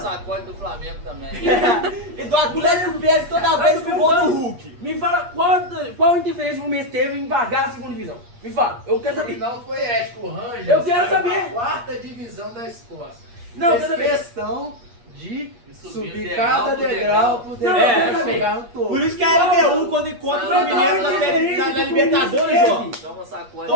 do Flamengo também. E do Atlético perde toda vez com o gol do Hulk. Me fala qual interferência o Fluminense teve em pagar a segunda divisão. Me fala, eu quero saber. Não foi ético, o Rangers. Eu quero saiu saber. da quarta divisão da Escócia. Não, eu Fez quero saber. questão de Subir subir degrau cada por degrau por Não, degrau eu quero pra saber. chegar no topo. Por isso que a LDU, quando encontra o Fluminense na Libertadores, ó. Toma sacode.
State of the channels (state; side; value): late; left; 8.4 ms